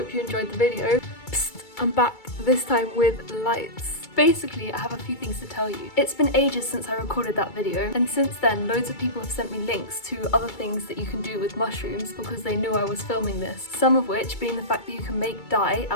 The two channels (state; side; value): late; right; 2.3 ms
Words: you enjoyed the video. Psst, I'm back, this time with lights. Basically, I have a few things to tell you. It's been ages since I recorded that video, and since then loads of people have sent me links to other things that you can do with mushrooms because they knew I was filming this. Some of which being the fact that you can make dye